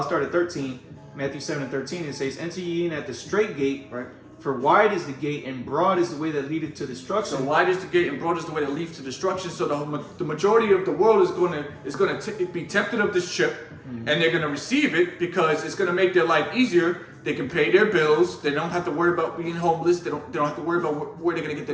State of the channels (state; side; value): identical; both; correlation 1.00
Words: start at 13. Matthew 7:13, it says, "Enter ye in at the straight gate, right? For wide is the gate and broad is the way that leadeth to destruction." So wide is the gate and broad is the way that leads to destruction. So the majority of the world is going to be tempted of this chip, and they're going to receive it because it's going to make their life easier. They can pay their bills. They don't have to worry about being homeless. They don't have to worry about where they're going to get